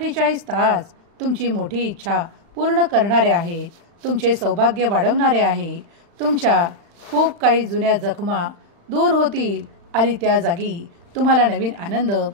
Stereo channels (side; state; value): left; late; 35 ms